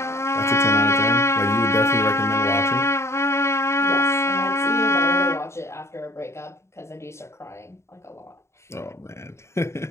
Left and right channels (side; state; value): right; late; 0.13 ms